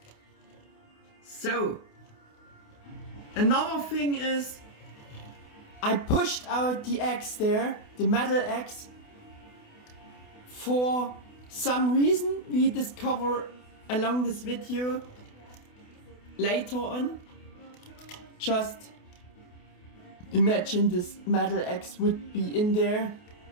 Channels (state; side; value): late; right; 28 ms